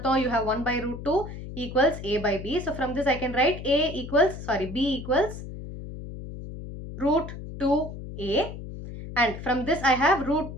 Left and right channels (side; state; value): left; noise; hum, 10 dB below the sound